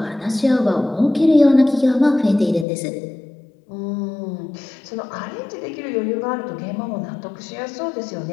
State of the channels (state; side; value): drops out; right; at 2.7 s